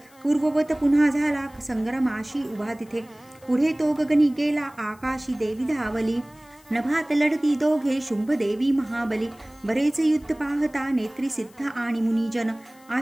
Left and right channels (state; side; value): noise; left; hiss, 28 dB below the sound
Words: पूर्ववत पुन्हा झाला संग्रामाशी उभा तिथे. पुढे तो गगनी गेला आकाशी देवी धावली. नभात लढती दोघे शुंभ देवी महाबली. बरेच युद्ध पाहता नेत्री सिद्ध आणि मुनिजन